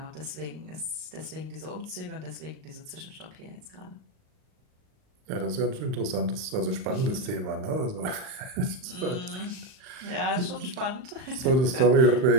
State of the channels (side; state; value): left; late; 39 ms